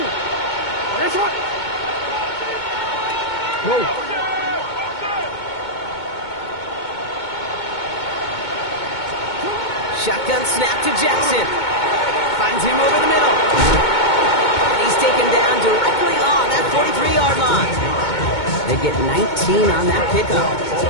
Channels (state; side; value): late; right; 2.2 ms